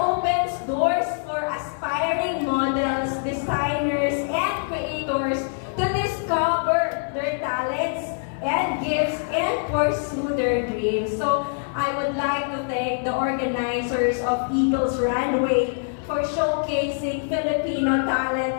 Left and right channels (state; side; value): silent; right; digital silence